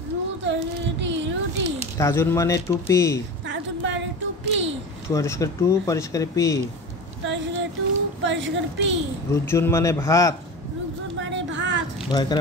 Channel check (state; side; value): normal; both; correlation 0.30